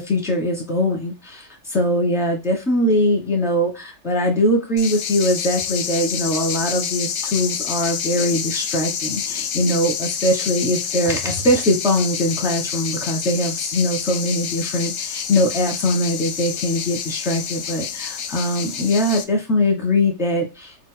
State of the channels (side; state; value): left; late; 3.3 ms